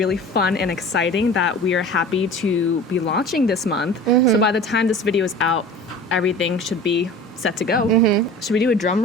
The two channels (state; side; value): normal; both; correlation 0.40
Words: fun and exciting that we are happy to be launching this month. Mm-hmm. So by the time this video is out, everything should be set to go. Mm-hmm. Should we do a drum